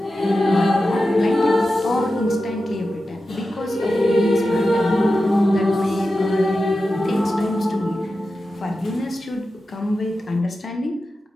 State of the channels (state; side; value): normal; both; correlation 0.92